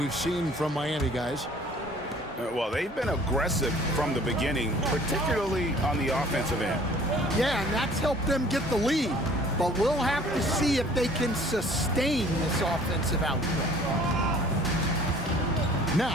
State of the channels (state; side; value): normal; both; correlation 0.52